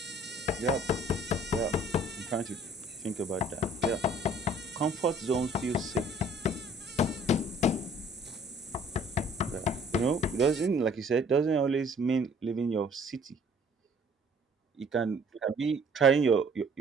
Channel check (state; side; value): normal; both; correlation 0.55